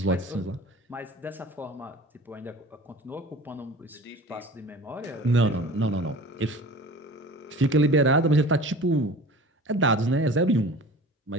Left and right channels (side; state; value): both; normal; correlation 0.40